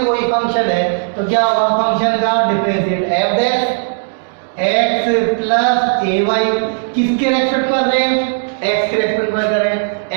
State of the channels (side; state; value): left; silent; digital silence